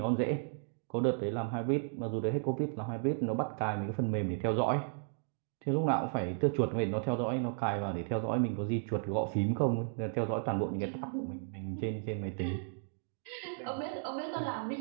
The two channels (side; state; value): left; silent; digital silence